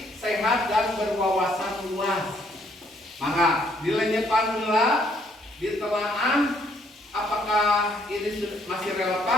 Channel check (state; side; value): normal; both; correlation 0.67